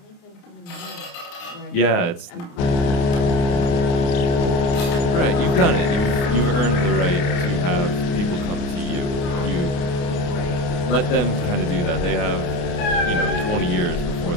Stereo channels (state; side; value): late; right; 29 ms